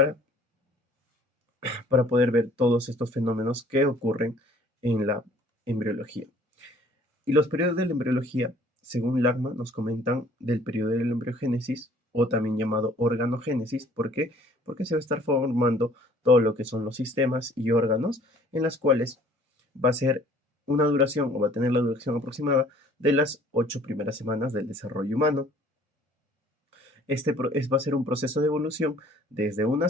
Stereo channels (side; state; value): both; normal; correlation 0.55